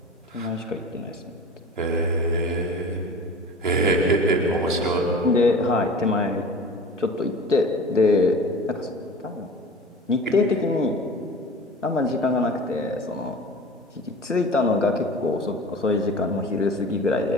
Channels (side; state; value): both; normal; correlation 0.39